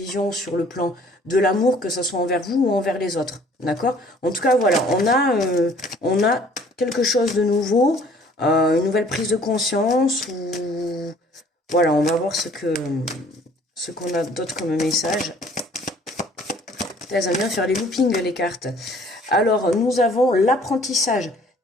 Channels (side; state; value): both; normal; correlation 0.55